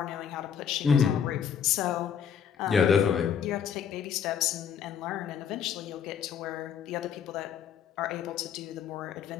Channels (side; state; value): right; quieter; 7.8 dB